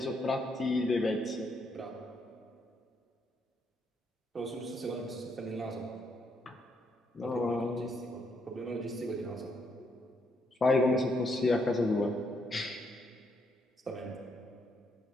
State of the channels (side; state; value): both; normal; correlation 0.75